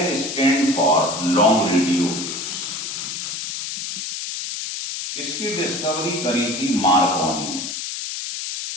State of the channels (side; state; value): left; noise; hiss, 5 dB below the sound